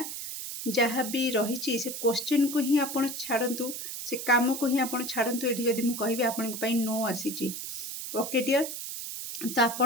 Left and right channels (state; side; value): noise; right; hiss, 7 dB below the sound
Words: जहाँ भी रही से क्वेश्चन को ही आप छाड़ू से काम को ही आप छाड़ू ये जब मुझे कहि आपण नो आसी ओके डियर तो